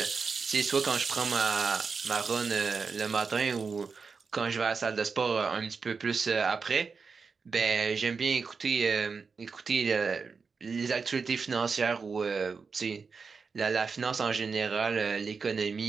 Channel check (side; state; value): left; quieter; 5.1 dB